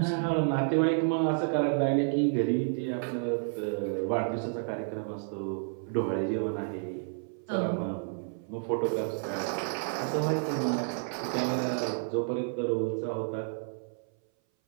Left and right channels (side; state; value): left; silent; 57 dB below the other